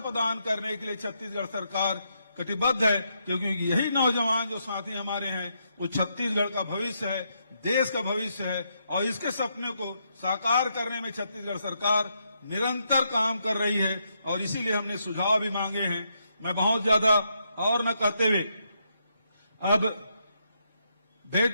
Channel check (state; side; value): inverted; both; correlation -0.79